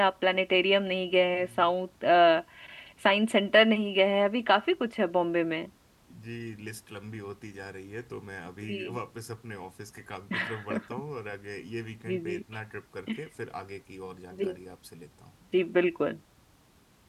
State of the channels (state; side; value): identical; both; correlation 1.00